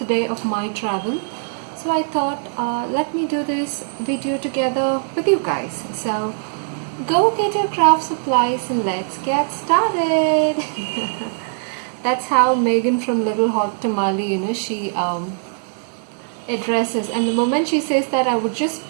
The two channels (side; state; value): left; silent; 64 dB below the other